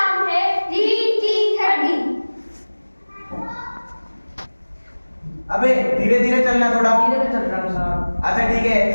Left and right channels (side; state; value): both; inverted; correlation -1.00